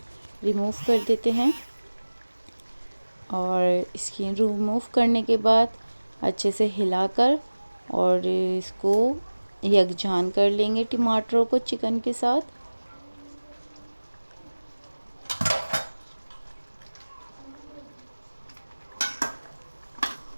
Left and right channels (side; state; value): both; inverted; correlation -1.00